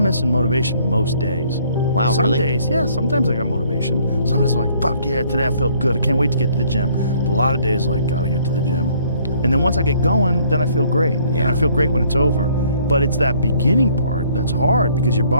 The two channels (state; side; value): inverted; both; correlation -0.62